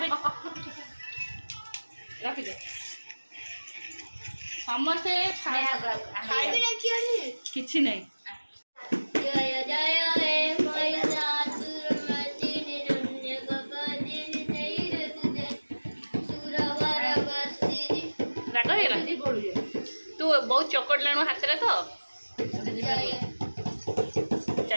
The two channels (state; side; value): inverted; both; correlation -1.00